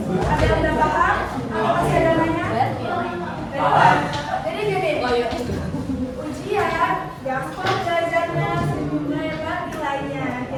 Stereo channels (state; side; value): identical; both; correlation 1.00